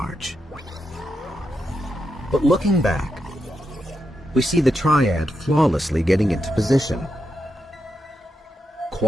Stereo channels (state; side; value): normal; both; correlation 0.85